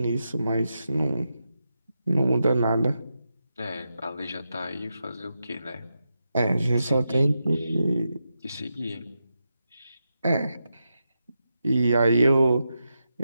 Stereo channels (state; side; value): inverted; both; correlation -0.87